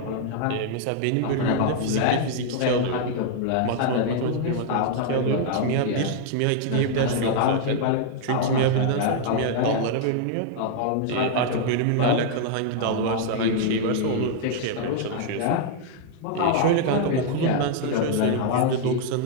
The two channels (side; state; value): both; different; correlation 0.00